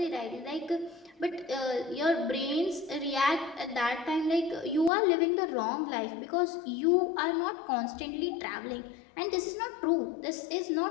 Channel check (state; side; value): drops out; right; at 4.9 s